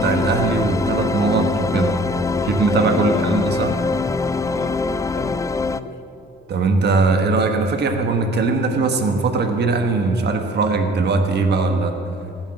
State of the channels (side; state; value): both; normal; correlation 0.52